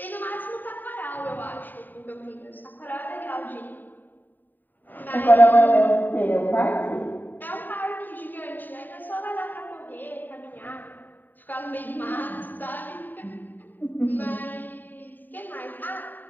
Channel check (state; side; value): late; right; 0.089 ms